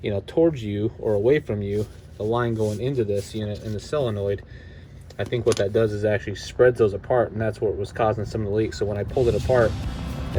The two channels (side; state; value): both; identical; correlation 1.00